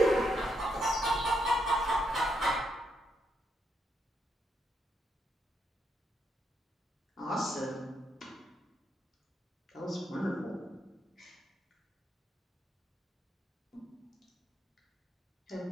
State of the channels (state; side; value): normal; both; correlation 0.78